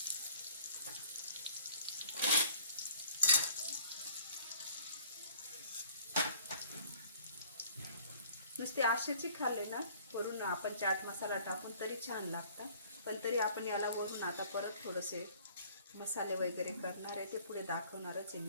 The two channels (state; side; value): inverted; both; correlation -0.53